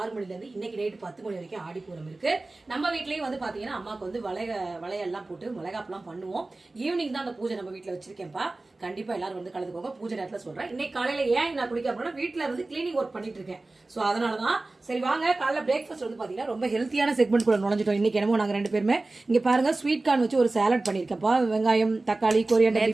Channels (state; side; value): quieter; left; 3.1 dB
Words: 6 மணில இருந்து இன்னைக்கு நைட்டு 10 மணி வரைக்கும் ஆடிப்பூரம் இருக்கு. நம்ம வீட்லயும் வந்து பாத்தீங்கன்னா அம்மாக்கு வந்து வளையெல்லாம் போட்டு மிளகாப்பெல்லாம் பண்ணுவோம். ஈவினிங் தான் அந்த பூஜை நம்ம வீட்டுல வச்சிருக்கேன்ப்பா. கண்டிப்பா எல்லாரும் வந்து கலந்துக்கோங்க. பூஜை நேரத்துல சொல்றேன். இன்னைக்கு காலையில ஏன் நான் குளிக்க அப்படின்னா வீட்டுல வந்து கிளீனிங் ஒர்க் பண்ணிட்டு இருக்கேன். சோ அதனாலதான் சரி வாங்க காலைல பிரேக்ஃபாஸ்ட் வந்து பாத்தீங்கன்னா ரொம்ப ஹெல்த்தியான செக்மெண்ட் கூட நுழைஞ்சிட்டோம். இன்னைக்கு என்னமோ நாங்க 2 பேருமே இங்க பாருங்க ஸ்வீட் கார்ன் வச்சு ஒரு சாலட் பண்ணிருக்கேன்ப்பா. வெங்காயம், தக்காளி,